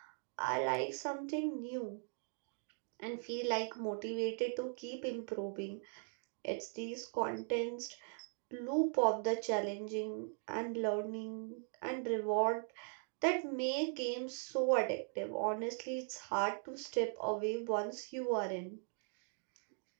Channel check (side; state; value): left; silent; 51 dB below the other